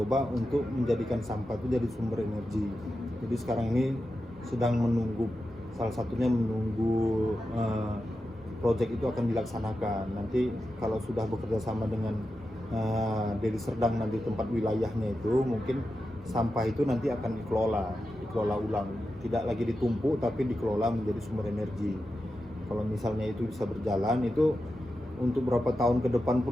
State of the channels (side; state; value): both; normal; correlation 0.90